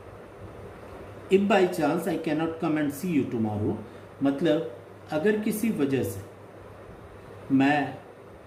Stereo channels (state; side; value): identical; both; correlation 1.00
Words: If by chance I cannot come and see you tomorrow, मतलब अगर किसी वजह से मैं